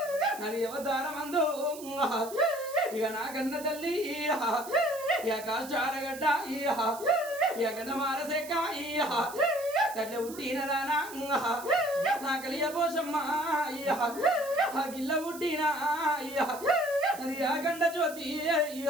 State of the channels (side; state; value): right; noise; hiss, 15 dB below the sound